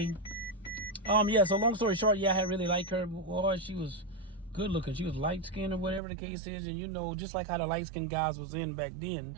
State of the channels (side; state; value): left; drops out; at 6.0 s